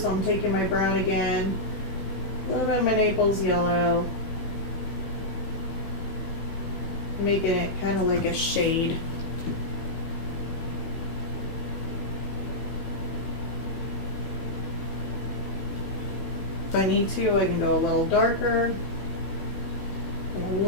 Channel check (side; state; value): right; late; 16 ms